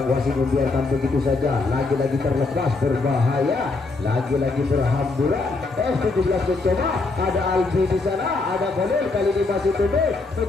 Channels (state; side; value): quieter; right; 3.6 dB